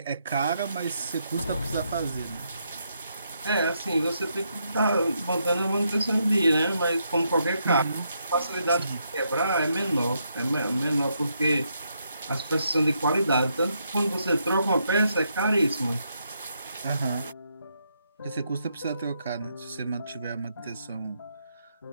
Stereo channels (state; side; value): inverted; both; correlation -0.78